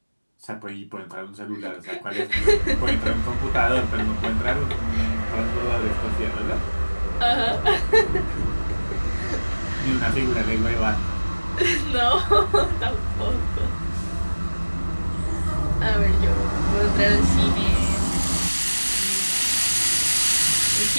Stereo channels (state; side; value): inverted; both; correlation -1.00